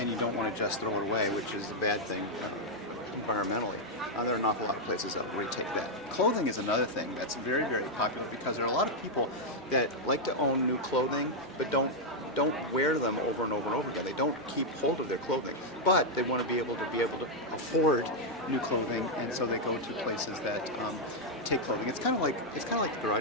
you don't want to just throw it away, which is a bad thing environmentally, there are an awful lot of places that will take that. Clothing is another thing that's very, very popular because there are a lot of people that like to own new clothing but don't wear them over and over and over again. They don't keep hold of their clothing, but they want to be able to afford new clothing, and so they go to places that take clothing. It's kind of like the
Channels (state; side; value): normal; both; correlation -0.02